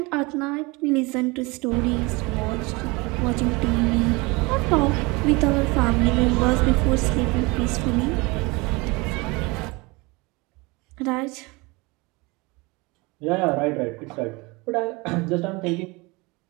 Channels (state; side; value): quieter; left; 25.4 dB